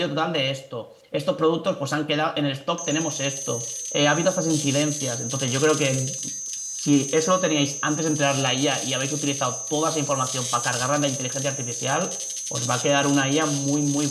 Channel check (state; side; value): identical; both; correlation 1.00